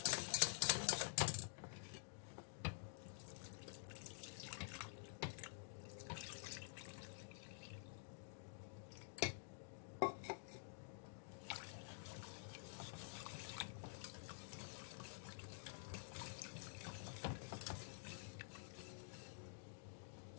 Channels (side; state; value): right; silent; digital silence